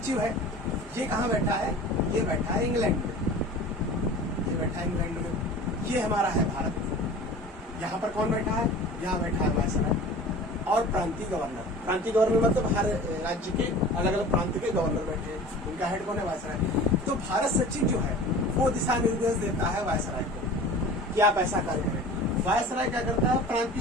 है, ये कहाँ बैठा है? ये बैठा है इंग्लैंड में। ये बैठा है इंग्लैंड में। ये हमारा है भारत। यहाँ पर कौन बैठा है? यहाँ बैठा है वायसराय और प्रांतीय गवर्नर। प्रांतीय गवर्नर मतलब हर राज्य के अलग अलग प्रांत के गवर्नर बैठे हैं, उनका हेड कौन है? वायसराय। तो भारत सचिव जो है वो दिशा निर्देश देता है वायसराय को कि आप ऐसा कार्य करें। वायसराय क्या करता है?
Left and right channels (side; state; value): both; normal; correlation 0.39